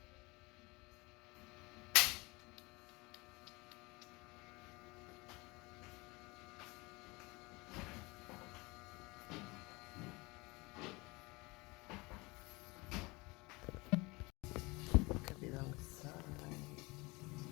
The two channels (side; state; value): right; quieter; 24.7 dB